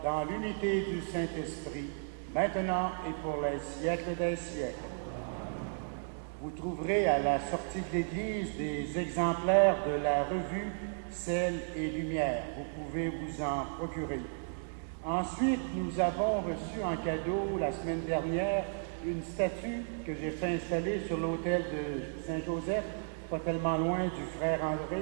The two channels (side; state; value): left; silent; digital silence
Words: dans l'unité du Saint-Esprit, maintenant et pour les siècles des siècles. Vous trouverez à la sortie de l'Église des exemplaires de la revue Sel et Lumière. Vous pouvez vous en procurer. Ensuite, nous avons reçu en cadeau la semaine dernière une statue que j'ai fait installer sur l'autel de Saint-Joseph, pas tellement loin du frère